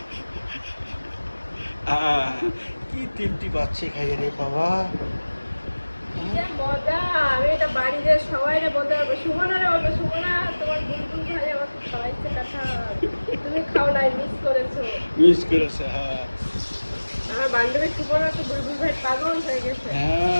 কি তৃপ্তি পাচ্ছে খাইয়ে রে বাবা। কি যে মজা! আমি এটা বাড়িতে সবাইরে বলতে পারবো। সুমনারে বলবো, সুমনা তোমার বুলবুল ভাই আমাকে খাওয়াইছে কাঁঠাল। তুমি খাও নাই, মিস করেছো। মিস করেছে, হ্যাঁ আমার বান্ধবী সুমনা তো বুলবুল ভাই পাগল হয়ে গেছে।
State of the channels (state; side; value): inverted; both; correlation -1.00